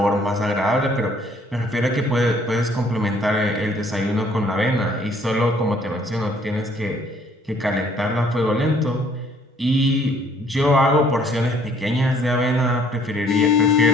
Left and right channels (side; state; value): both; normal; correlation 0.61